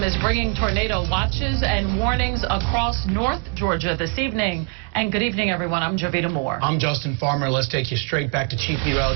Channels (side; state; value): left; quieter; 35.8 dB